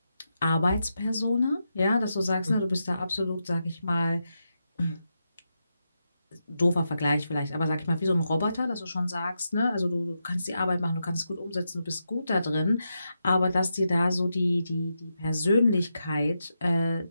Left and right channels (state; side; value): inverted; both; correlation -0.86